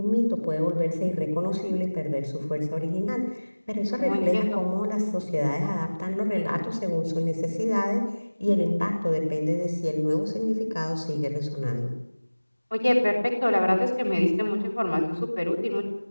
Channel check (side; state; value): both; inverted; correlation -1.00